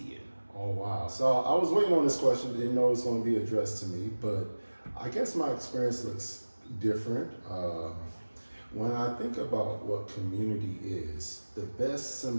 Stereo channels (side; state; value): both; inverted; correlation -1.00